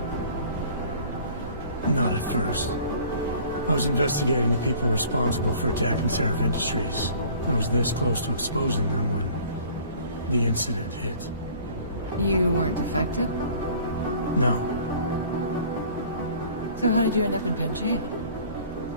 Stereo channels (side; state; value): both; inverted; correlation -0.50